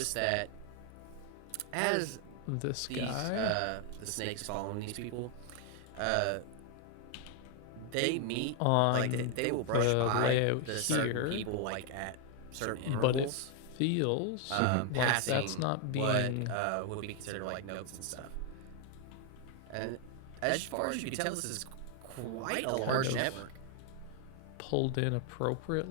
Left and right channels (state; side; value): different; both; correlation 0.00